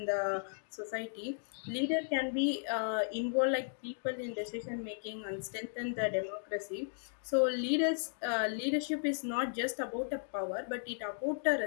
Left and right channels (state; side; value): silent; right; digital silence